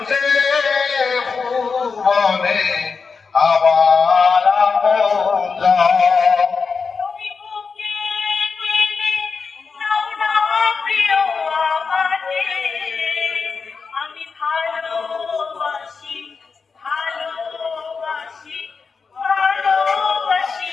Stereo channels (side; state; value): right; quieter; 5.1 dB